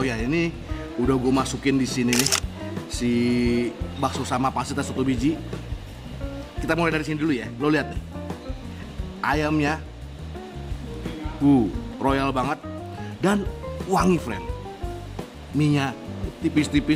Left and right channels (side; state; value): both; identical; correlation 1.00